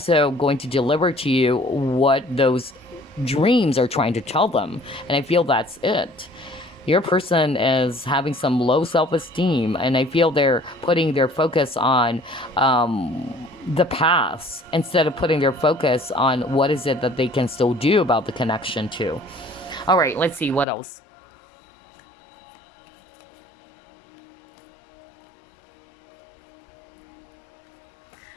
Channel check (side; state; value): right; drops out; at 20.7 s